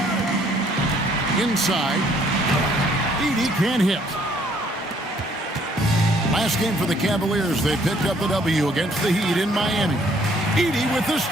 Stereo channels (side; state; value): both; normal; correlation 0.64